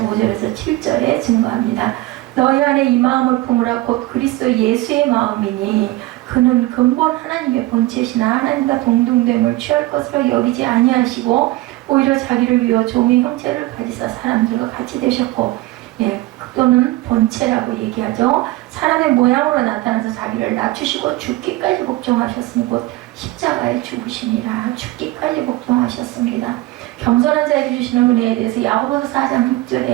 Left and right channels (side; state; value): left; quieter; 18.6 dB